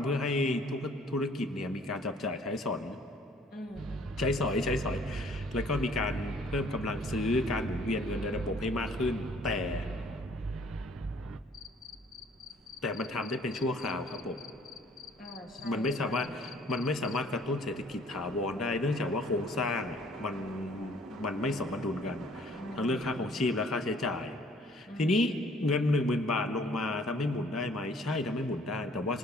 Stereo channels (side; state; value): both; normal; correlation 0.57